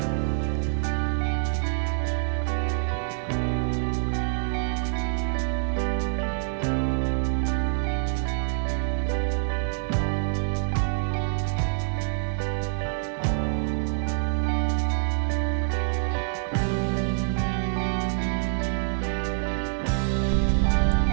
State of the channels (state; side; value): silent; left; digital silence